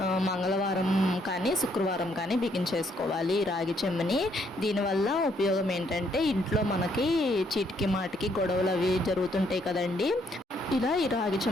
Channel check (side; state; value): both; normal; correlation 0.70